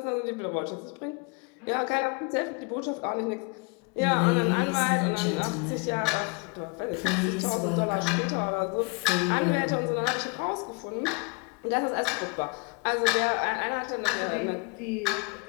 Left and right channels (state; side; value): quieter; right; 32.5 dB